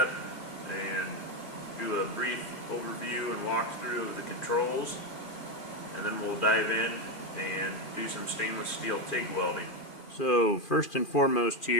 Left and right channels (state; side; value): late; right; 2.4 ms